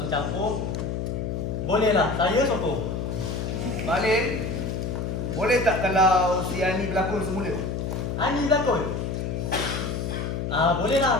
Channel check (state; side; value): noise; left; hum, 3 dB below the sound